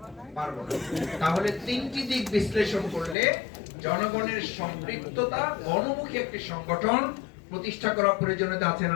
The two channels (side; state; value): right; drops out; at 3.2 s